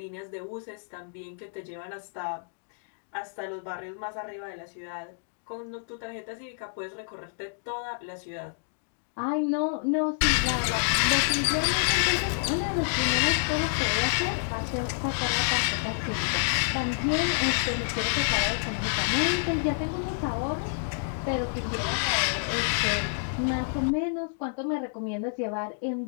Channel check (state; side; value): silent; right; digital silence